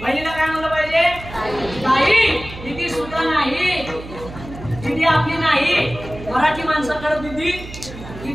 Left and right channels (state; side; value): noise; right; hum, 14 dB below the sound